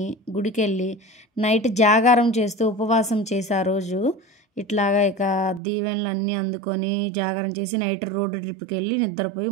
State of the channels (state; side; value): drops out; left; at 5.6 s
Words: గుడికి వెళ్ళి నైట్ జాగారం చేస్తూ ఉపవాసం చేసి ఆ రోజు ఇట్లాగా ఇక దీవెనలు అన్నీ అందుకొని జాగారం చేసి నైట్ రోడ్ ట్రిప్కి వెళ్ళి నిద్రపోయి